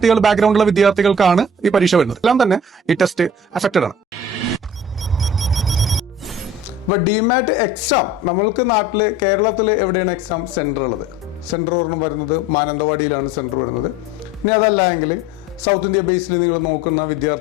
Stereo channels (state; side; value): normal; both; correlation 0.44